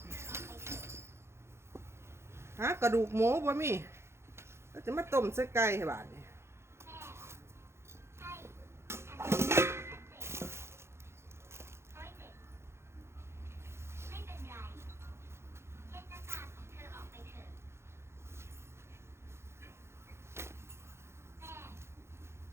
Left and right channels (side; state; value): left; late; 0.13 ms